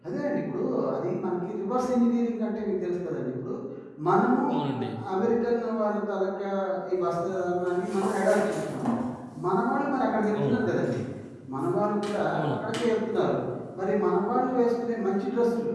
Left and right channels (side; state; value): both; identical; correlation 1.00